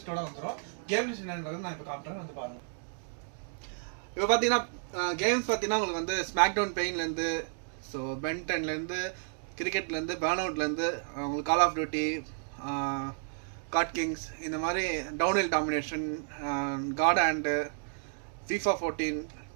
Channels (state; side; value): silent; left; digital silence